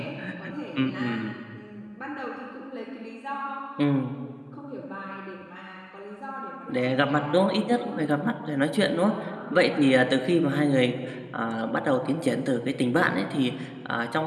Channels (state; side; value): identical; both; correlation 1.00